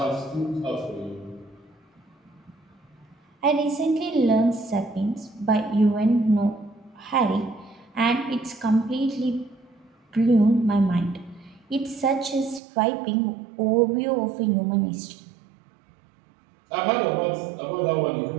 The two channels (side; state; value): left; drops out; at 12.6 s